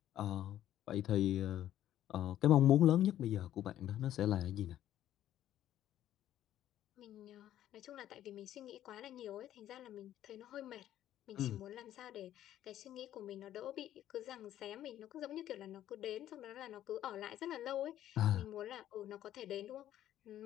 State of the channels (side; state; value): right; quieter; 12.2 dB